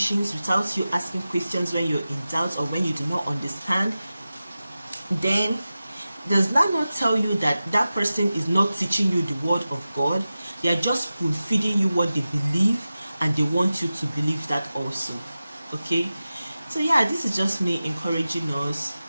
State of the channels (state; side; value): inverted; both; correlation -0.95